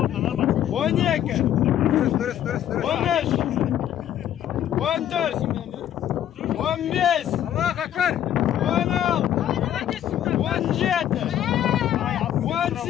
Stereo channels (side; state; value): right; quieter; 11.1 dB